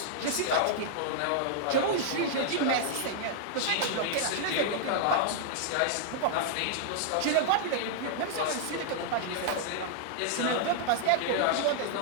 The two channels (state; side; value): different; both; correlation -0.01